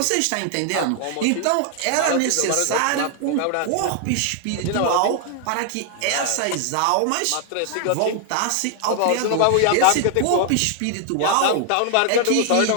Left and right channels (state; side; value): different; both; correlation 0.00